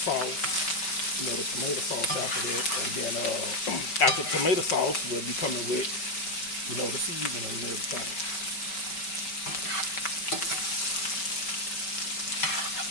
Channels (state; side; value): late; right; 5.1 ms